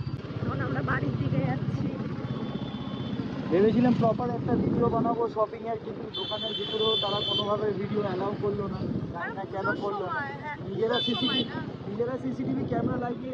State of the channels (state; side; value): identical; both; correlation 1.00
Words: এখন আমরা বাড়ির দিকে যাচ্ছি। ভেবেছিলাম প্রপার একটা ভিডিও বানাবো শপিং এর, কিন্তু দোকানের ভিতরেও তারা কোনোভাবে ভিডিও অ্যালাউ করলো না, জানি না কেন করলো না। নিজেরা সিসিটিভি ক্যামেরা